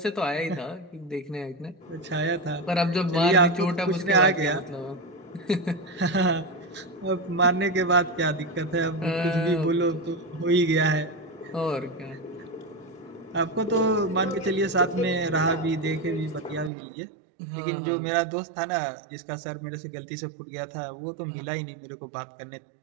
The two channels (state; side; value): drops out; left; at 16.7 s